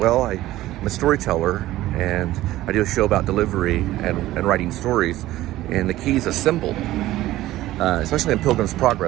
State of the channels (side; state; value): left; quieter; 15.6 dB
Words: I'm a storyteller, and I do a show about delivery and writing stories, and the key is a symbol, especially in Pilgrim's